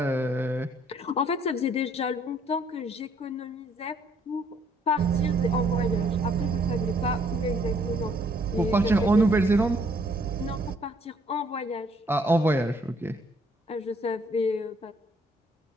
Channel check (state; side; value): normal; both; correlation 0.65